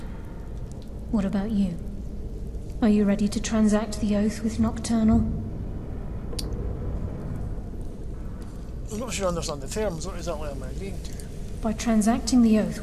What about you? Are you ready to transact the oath with Nocturnal? I'm not sure I understand the terms. What exactly am I agreeing to? By transacting the oath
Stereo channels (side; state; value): both; identical; correlation 1.00